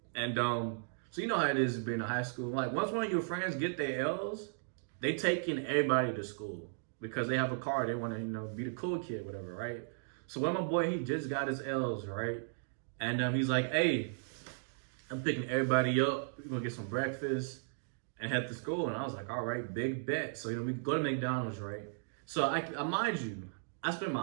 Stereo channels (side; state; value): left; silent; digital silence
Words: And so you know how it is being in high school. Like, once one of your friends get their L's, they taking everybody to school because they have a car. They want to, you know, be the cool kid, whatever, right? So when my boy, he just got his L's, right? And he's like, hey, I'm picking everybody up. We're gonna get some breakfast, and head to school. And I was like, all right, big bet. So, we go to McDonald's, right? So I mind you, I spent